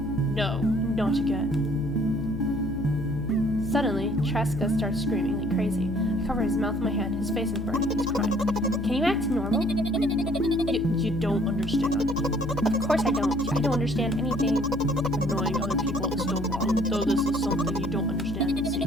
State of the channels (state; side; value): noise; left; hum, 7 dB below the sound